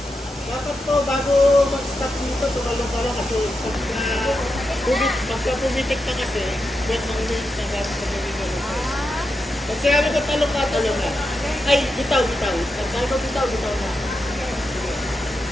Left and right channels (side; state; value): both; normal; correlation 0.87